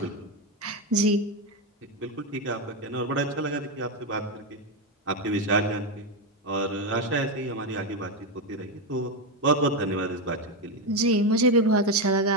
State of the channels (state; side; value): normal; both; correlation 0.08